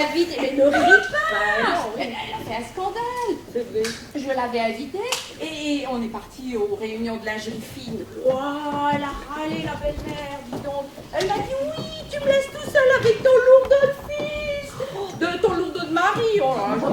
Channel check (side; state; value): both; identical; correlation 1.00